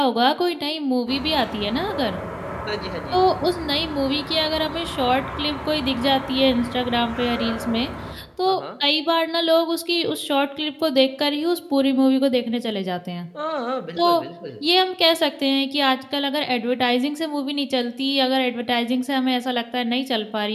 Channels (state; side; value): identical; both; correlation 1.00